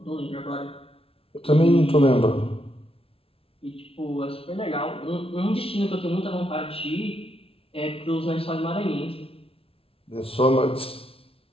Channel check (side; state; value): right; late; 0.27 ms